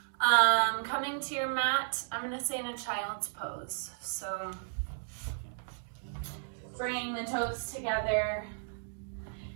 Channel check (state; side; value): silent; left; digital silence